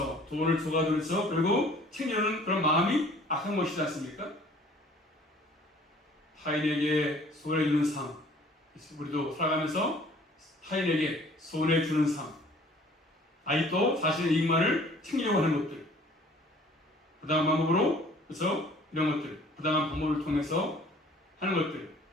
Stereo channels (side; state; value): both; normal; correlation 0.53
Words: 돈을 줘가지고 그리고 챙겨주는 그런 마음이 악한 것이지 않습니까? 타인에게 손해주는 삶, 우리도 살아가면서 타인에게 손해주는 삶, 아직도 자신의 이익만을 챙기려고 하는 것들, 부당한 방법으로, 그래서 이런 것들, 부당한 방법을 통해서 하는 것들,